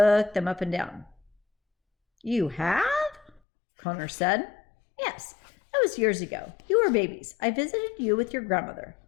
them up and down. "You have?" Connor said. "Yes, that was years ago. You were babies. I visited you with your grandmother,"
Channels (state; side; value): drops out; right; at 3.4 s